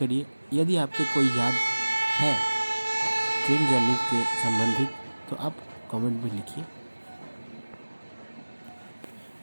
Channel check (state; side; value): inverted; both; correlation -1.00